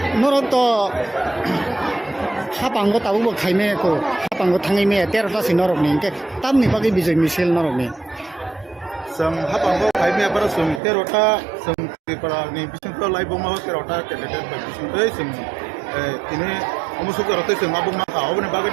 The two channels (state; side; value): drops out; left; at 10.8 s